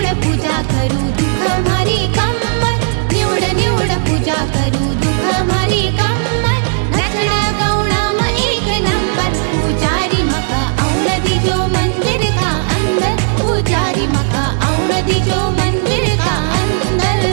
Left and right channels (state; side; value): silent; left; 65 dB below the other